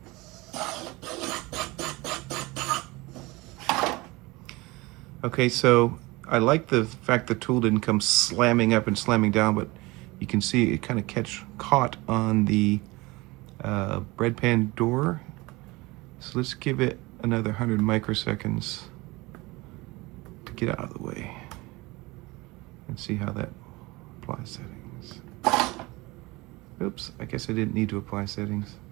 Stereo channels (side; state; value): left; quieter; 22.7 dB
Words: Okay, so I like the fact the tool didn't come slamming up and slamming down, but you can see it kind of caught on the bread pan door. So let's give it another 100 microseconds to get out of the way and see how that applies settings. Oops, I guess I didn't need to apply settings.